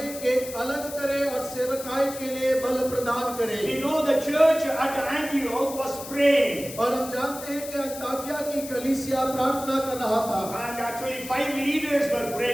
कि अलग करे और सेवकाई के लिए बल प्रदान करे। We know the church at Antioch was praying. और हम जानते हैं कि अंताकिया की कलीसिया प्रार्थना कर रहा था। And actually 5 leaders were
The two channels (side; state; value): left; noise; hiss, 12 dB below the sound